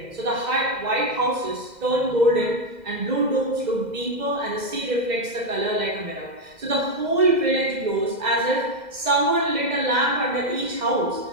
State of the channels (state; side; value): late; left; 2.0 ms